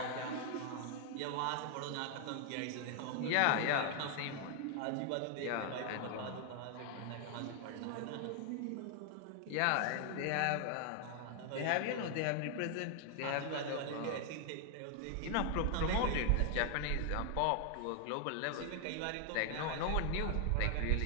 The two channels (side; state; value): both; different; correlation 0.00